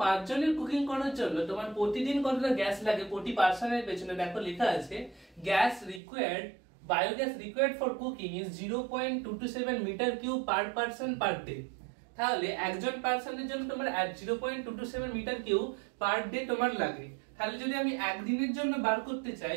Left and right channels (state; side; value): drops out; left; at 6.0 s